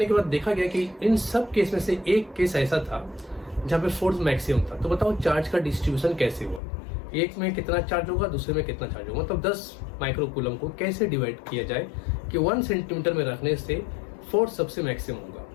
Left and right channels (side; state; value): right; drops out; at 6.6 s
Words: के बाद देखा गया कि इन सब केस में से एक केस ऐसा था जहाँ पे फोर्स मैक्सिमम था। तो बताओ चार्ज का डिस्ट्रीब्यूशन कैसे हुआ, एक में कितना चार्ज होगा, दूसरे में कितना चार्ज होगा, मतलब 10 माइक्रोकूलम को कैसे डिवाइड किया जाए कि 1 सेंटीमीटर में रखने से फोर्स सबसे मैक्सिमम होगा,